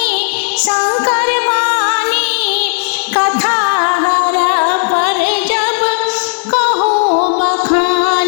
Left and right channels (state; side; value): silent; right; digital silence